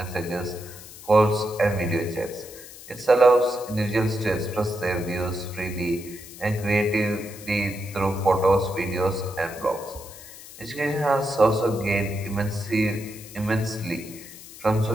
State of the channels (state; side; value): noise; left; hiss, 16 dB below the sound